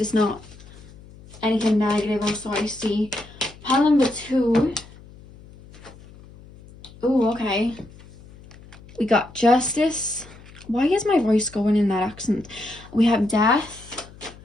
not anything negative or so I see. Pile number 2. Oh, okay. We got Justice. Why is my voice going in that accent? We have Death.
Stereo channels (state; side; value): noise; left; hum, 21 dB below the sound